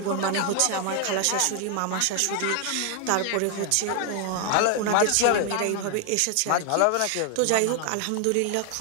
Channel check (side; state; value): both; different; correlation 0.00